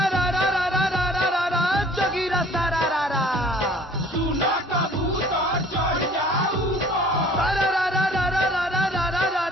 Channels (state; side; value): normal; both; correlation 0.53